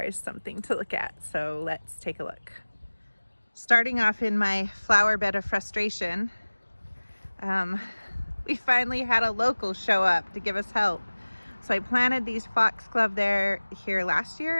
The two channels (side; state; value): both; inverted; correlation -1.00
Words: is something to look at. So let's take a look. Starting off in my flower bed of frustration, we finally had a local show up to give us help. So I planted these foxglove here last